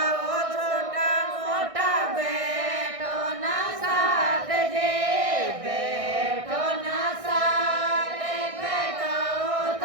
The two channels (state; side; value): late; left; 1.6 ms